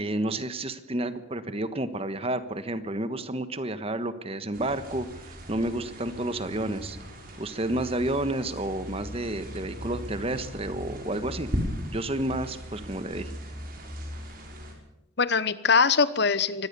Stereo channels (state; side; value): normal; both; correlation 0.23